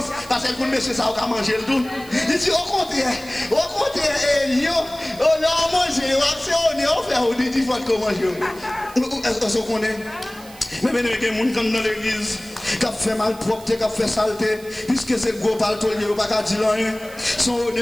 parce qu'elle connaît monsieur ça, on va manger le tout. Il dit, au contraire, Lion, on a mangé, on fait, on dit, il faut qu'on mange. Est-ce qu'on connaît? Mais il y a des gens qui sont dans l'église, qui fait malpropreté, qui fait saleté, puisque c'est le gros palto, il n'y a pas qu'à dire rien. Son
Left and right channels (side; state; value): right; noise; hiss, 20 dB below the sound